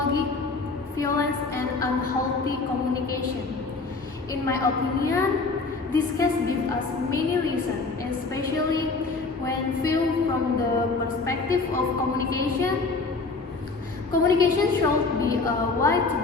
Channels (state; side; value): quieter; right; 3.9 dB